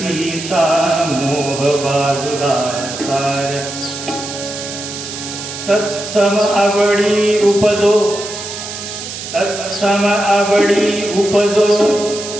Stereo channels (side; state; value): right; noise; hiss, 9 dB below the sound